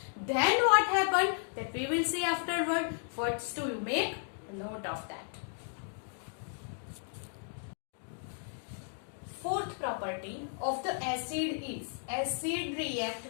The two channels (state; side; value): silent; right; 55 dB below the other